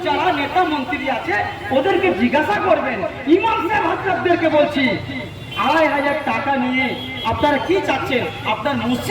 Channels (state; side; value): identical; both; correlation 1.00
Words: যারা নেতা মন্ত্রী আছে ওদেরকে জিজ্ঞাসা করবেন। ইমাম সাহেব হাজরাতদেরকে বলছি, ২৫০০ টাকা নিয়ে আপনারা কি চাচ্ছেন? আপনার